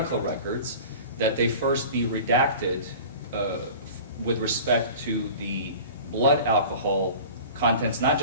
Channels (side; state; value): both; inverted; correlation -0.40